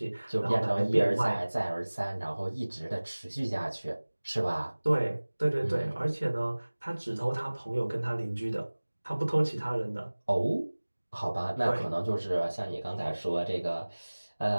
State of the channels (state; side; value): inverted; both; correlation -1.00